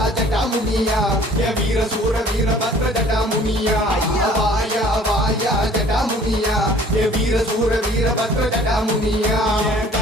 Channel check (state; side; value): normal; both; correlation 0.52